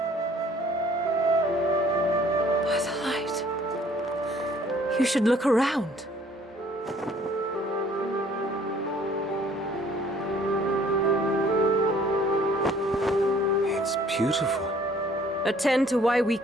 By the light. You should look around. It's beautiful. Attend to why we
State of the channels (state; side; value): normal; both; correlation 0.57